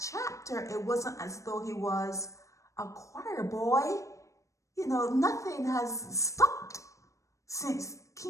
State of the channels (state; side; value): late; right; 0.15 ms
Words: It wasn't as though he was a choir boy. Nothing has stopped since